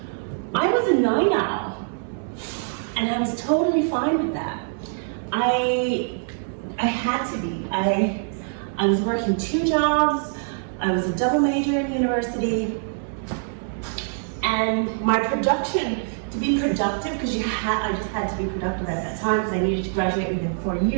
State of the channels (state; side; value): silent; left; digital silence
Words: was a night owl, and I was totally fine with that. I had to be. I was working 2 jobs, I was a double major in university, and my production, to be productive, because I just had to be productive at that time because I needed to graduate within 4